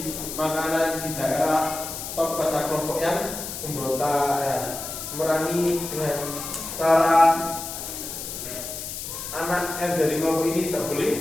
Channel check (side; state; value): left; noise; hiss, 7 dB below the sound